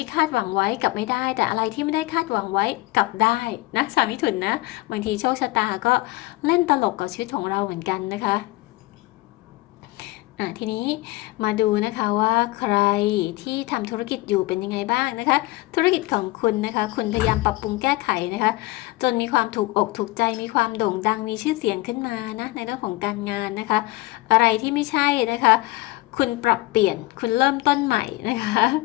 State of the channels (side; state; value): right; quieter; 19.8 dB